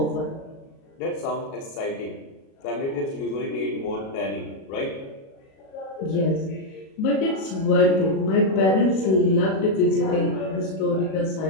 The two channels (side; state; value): right; late; 37 ms